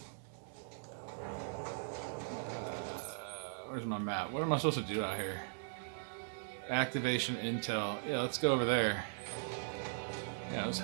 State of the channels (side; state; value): left; silent; digital silence